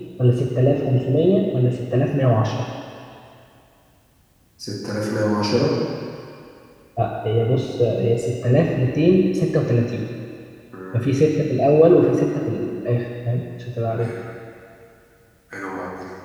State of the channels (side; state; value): both; identical; correlation 1.00